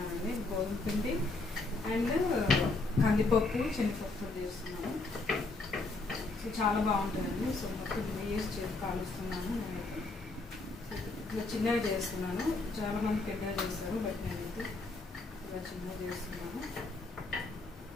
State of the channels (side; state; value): right; quieter; 3.4 dB